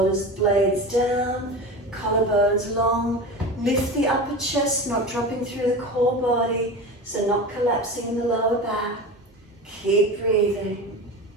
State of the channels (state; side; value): normal; both; correlation 0.28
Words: blades down. Collarbones long. Lift the upper chest, not dropping through the core body. So not collapsing in the lower back. Keep breathing.